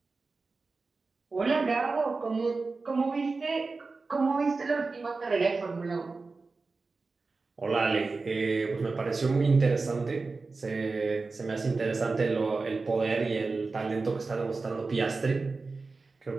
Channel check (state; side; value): quieter; left; 4.0 dB